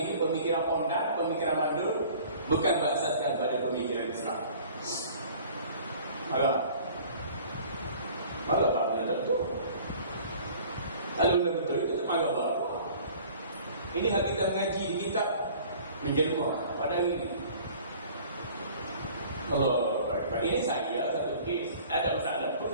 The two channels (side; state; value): both; inverted; correlation -0.49